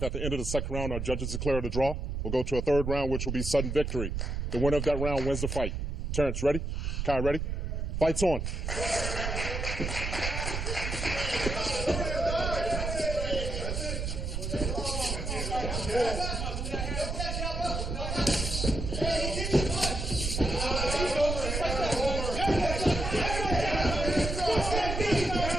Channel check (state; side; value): noise; right; rumble, 3 dB below the sound